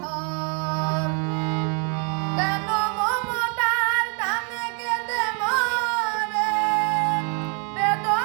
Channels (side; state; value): left; quieter; 36.8 dB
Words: কেন মমতার টানে কেঁদে মরে